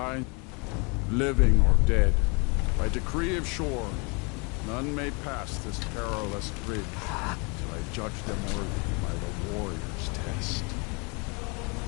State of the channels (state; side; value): quieter; right; 31.9 dB